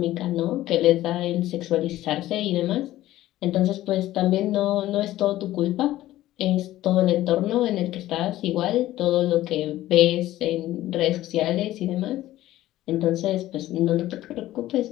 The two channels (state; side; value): quieter; right; 15.0 dB